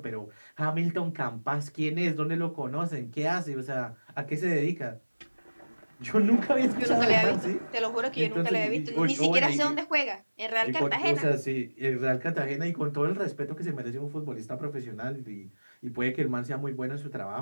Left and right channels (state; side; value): inverted; both; correlation -1.00